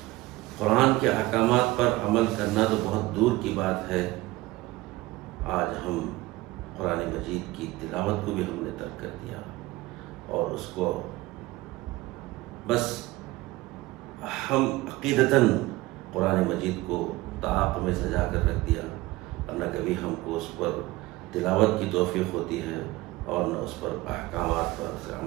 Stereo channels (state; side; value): quieter; left; 19.3 dB